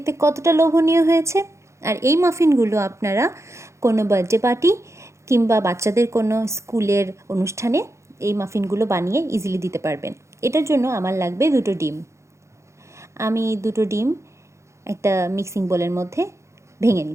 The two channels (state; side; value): late; left; 0.14 ms